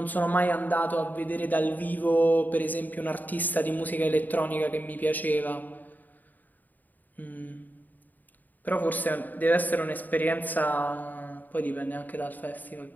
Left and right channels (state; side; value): late; right; 0.085 ms